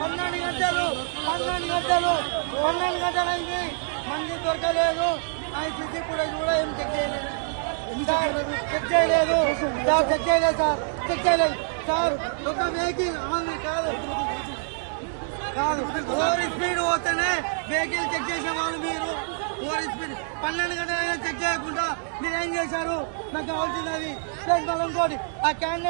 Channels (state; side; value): silent; left; digital silence